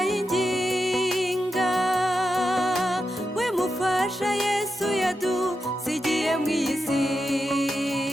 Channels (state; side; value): normal; both; correlation 0.88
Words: yinginga, we mufasha Yesu yadusigiye mu isi.